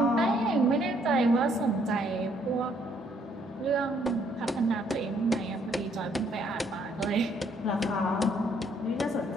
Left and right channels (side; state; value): both; normal; correlation 0.67